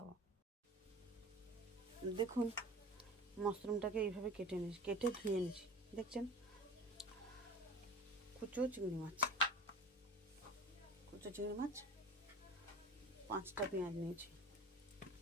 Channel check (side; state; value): both; normal; correlation 0.38